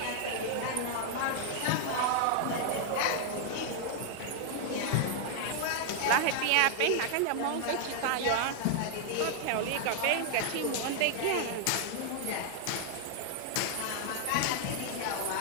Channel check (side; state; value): both; different; correlation 0.00